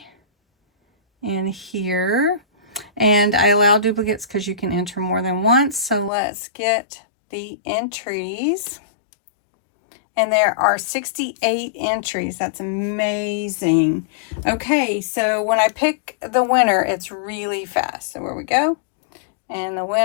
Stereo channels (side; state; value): right; drops out; at 6.1 s